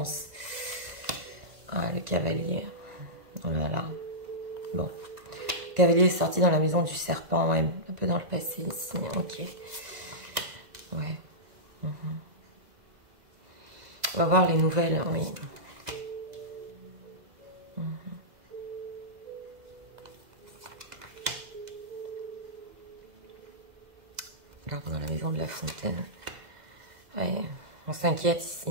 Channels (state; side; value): late; left; 2.0 ms